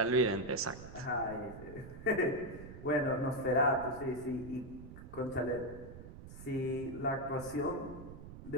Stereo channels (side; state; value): right; noise; rumble, 14 dB below the sound